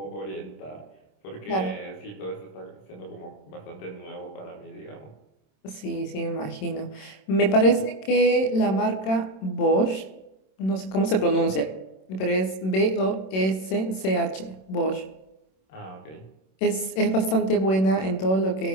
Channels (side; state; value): right; late; 26 ms